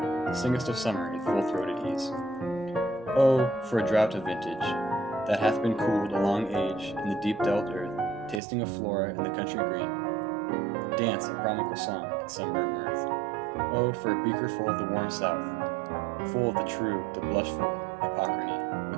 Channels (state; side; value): drops out; left; at 8.4 s